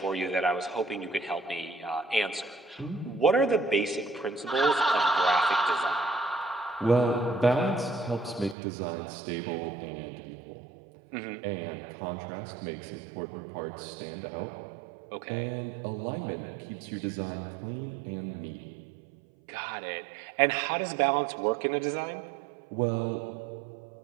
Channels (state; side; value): drops out; left; at 8.6 s